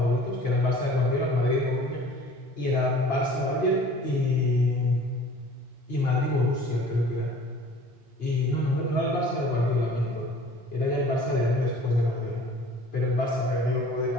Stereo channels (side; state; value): both; normal; correlation 0.48